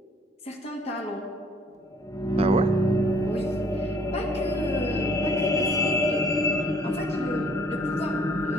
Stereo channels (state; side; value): normal; both; correlation 0.60